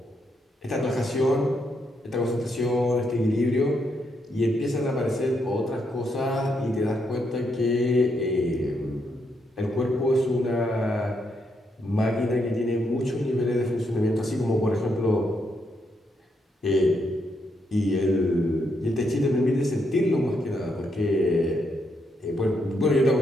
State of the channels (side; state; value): both; normal; correlation 0.78